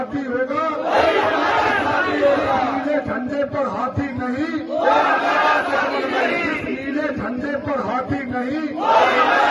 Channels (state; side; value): identical; both; correlation 1.00